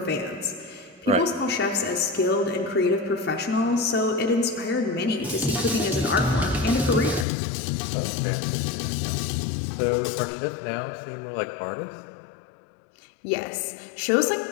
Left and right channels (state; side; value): drops out; right; at 7.2 s